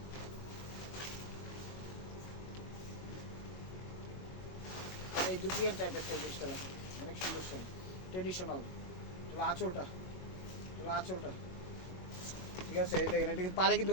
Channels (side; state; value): right; late; 22 ms